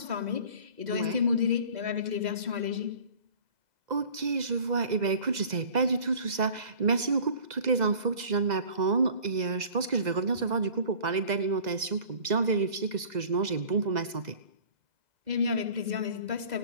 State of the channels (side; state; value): left; late; 2.0 ms